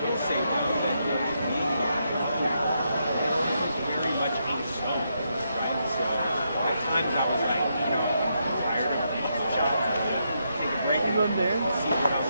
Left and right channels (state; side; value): inverted; both; correlation -0.80